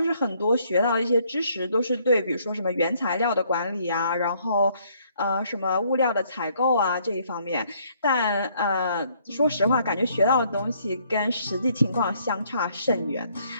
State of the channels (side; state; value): both; inverted; correlation -0.66